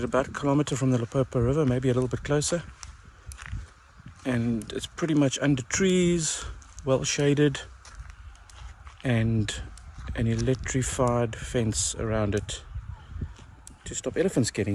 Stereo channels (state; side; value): identical; both; correlation 1.00